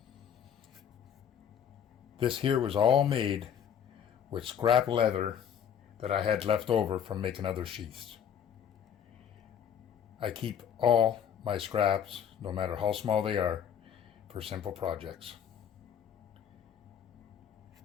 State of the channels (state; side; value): quieter; right; 8.6 dB